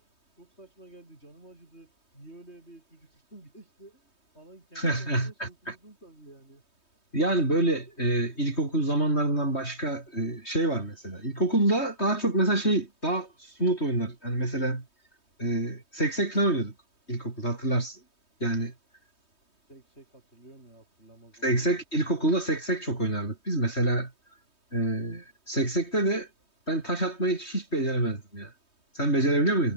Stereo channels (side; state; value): right; late; 3.2 ms